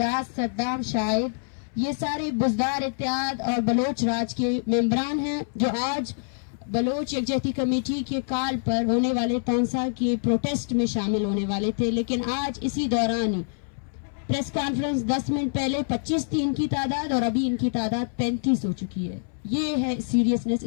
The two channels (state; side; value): silent; right; 61 dB below the other